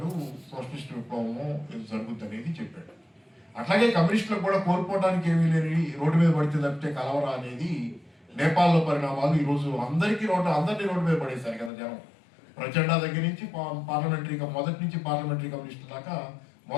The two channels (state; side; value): drops out; right; at 11.7 s